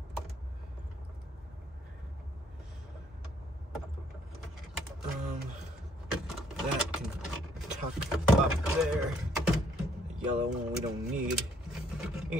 That can tuck up there. The yellow one we don't need.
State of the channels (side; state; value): both; normal; correlation 0.66